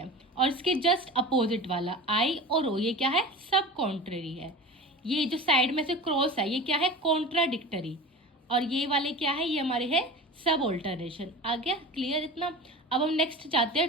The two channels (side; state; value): both; normal; correlation 0.33